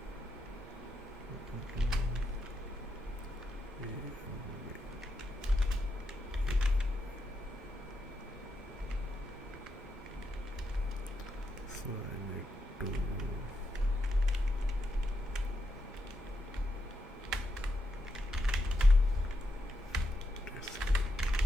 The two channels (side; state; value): both; normal; correlation 0.83